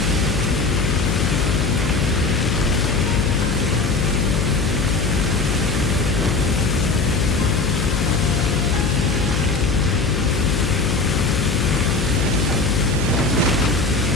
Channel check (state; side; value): noise; left; hum, 1 dB below the sound